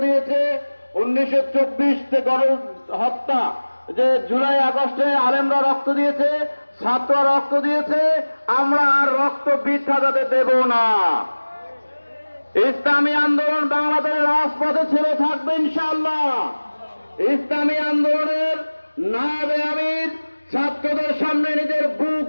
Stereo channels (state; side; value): inverted; both; correlation -1.00